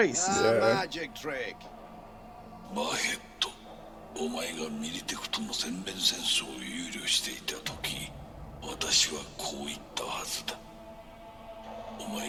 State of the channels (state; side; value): identical; both; correlation 1.00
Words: Magic trick. お前がミリテクとの全面戦争を憂慮していた時、私はこう言ったはずだ。お